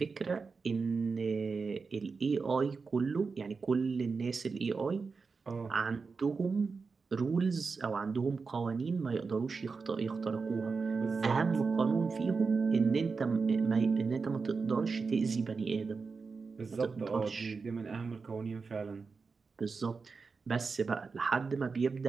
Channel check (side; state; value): left; quieter; 4.7 dB